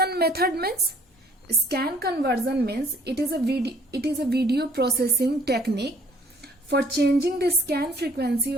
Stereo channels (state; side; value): normal; both; correlation 0.59